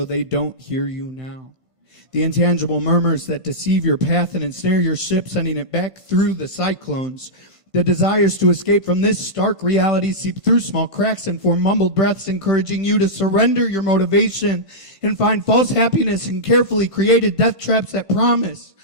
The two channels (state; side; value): late; left; 1.5 ms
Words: they don't hear you now. The intangible murmurs that deceive your path and ensnare your ship, sending it back through the cyclones. The desires to escape from this stark reality seep through small cracks and form mumbled breaths, encouraging you to surrender your motivation and find false happiness in carefully created death traps that promise